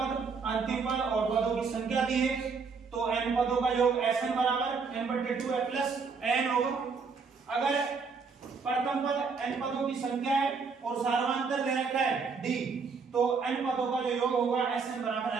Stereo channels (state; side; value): quieter; left; 5.1 dB